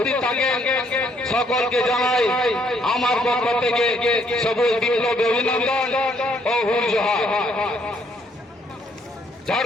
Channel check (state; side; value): normal; both; correlation 0.68